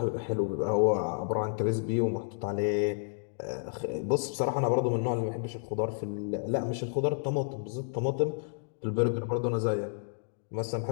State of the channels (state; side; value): silent; right; digital silence